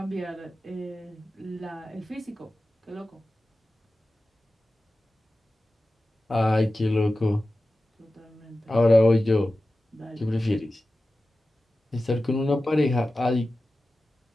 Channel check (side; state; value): both; normal; correlation 0.95